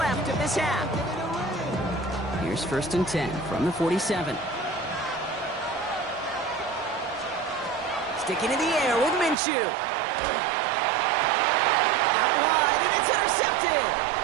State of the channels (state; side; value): drops out; left; at 9.3 s